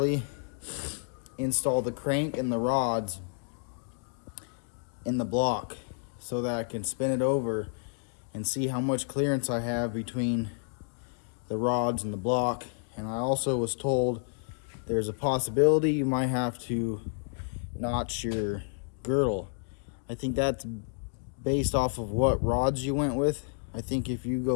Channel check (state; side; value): silent; right; 56 dB below the other